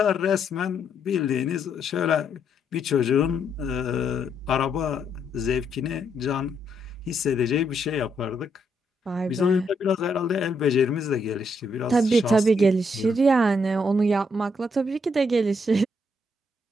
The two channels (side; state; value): both; normal; correlation 0.75